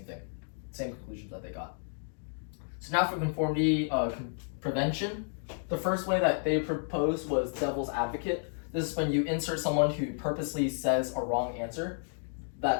thing, same conclusions that they got. So now for conformity prevention, the first way that they proposed was devil's advocate. This is when you insert someone who purposely says a wrong answer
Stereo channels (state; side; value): silent; right; 57 dB below the other